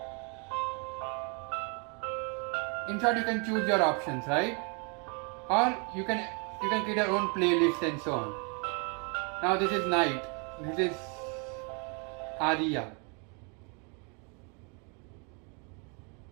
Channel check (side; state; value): left; quieter; 35.3 dB